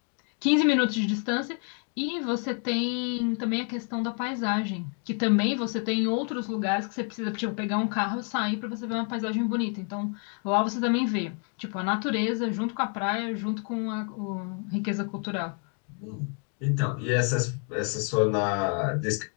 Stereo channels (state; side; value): quieter; right; 39.7 dB